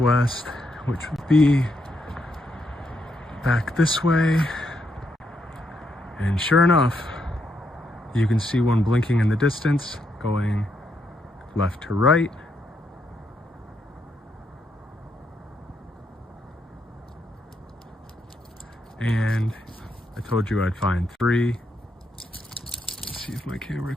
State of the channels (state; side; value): normal; both; correlation 0.78